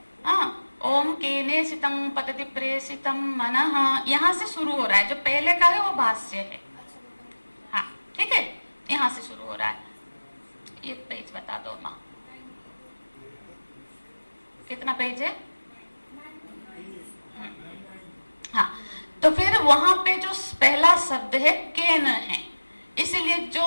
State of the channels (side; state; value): both; inverted; correlation -1.00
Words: ओम केने सितम पतति प्रेषितम मनः, यहाँ से शुरू हो रहा है। जो पहले का है वो भाष्य है। हाँ, ठीक है, यहाँ से शुरू हो रहा है। ये पेज बता दो माँ, कितना पेज है? हाँ, तो फिर वहां पे जो पहला शब्द है केन है, इसीलिए जो